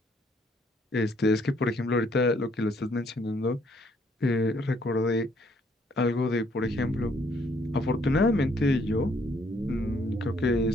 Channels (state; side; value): normal; both; correlation 0.67